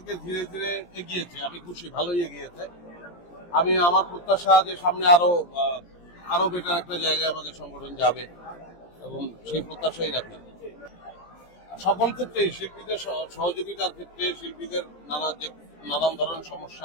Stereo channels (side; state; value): right; late; 17 ms